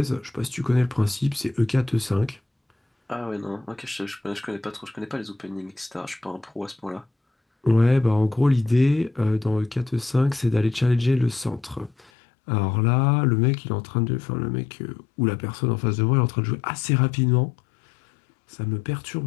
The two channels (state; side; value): drops out; right; at 12.1 s